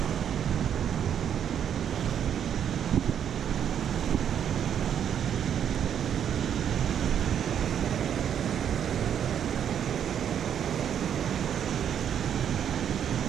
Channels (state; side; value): quieter; left; 8.9 dB